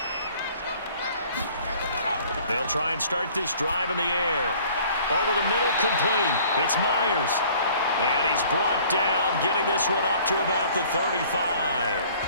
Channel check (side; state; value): both; inverted; correlation -0.53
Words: They'll try and start this drive in the air. Over the middle, complete. It's Myers. And he's brought down, getting this one up to about the 35.